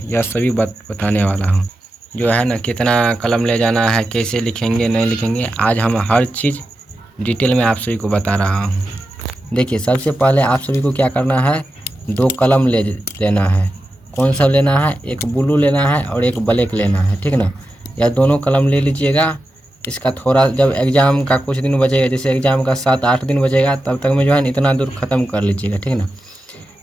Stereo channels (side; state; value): both; normal; correlation 0.91